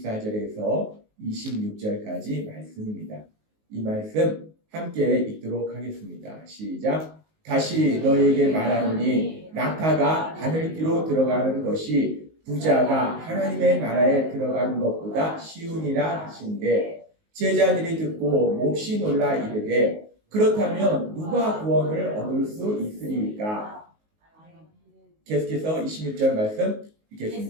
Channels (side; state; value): left; late; 19 ms